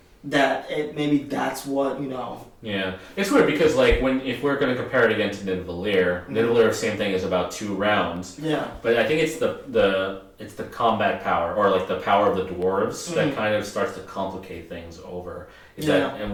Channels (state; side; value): identical; both; correlation 1.00